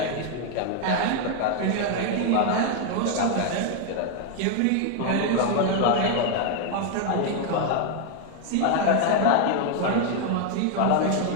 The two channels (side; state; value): both; different; correlation 0.00